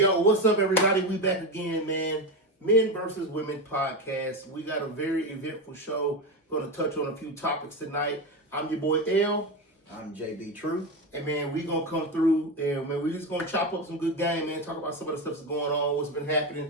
what's up, everybody? We back again, man. Men versus Women podcast. We got a very eventful show. Going to touch on a few topics tonight. I'm your boy L. I'm JB True. And man, we gonna come through and man, we just gonna chop up some good game, man. Talk about some of the stuff that's going on, what's been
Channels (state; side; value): normal; both; correlation 0.16